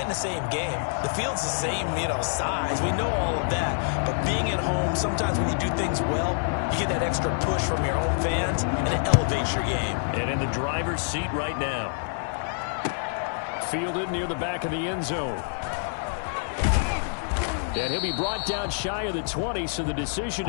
the same game. The field's the same, size. We know all of that. But being at home, sometimes when you do things well, you get that extra push from your home fans, and it elevates your game. And in the driver's seat right now. Fielded near the back of the end zone. And he'll be brought down shy of the 20, so the decision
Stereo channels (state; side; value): silent; right; digital silence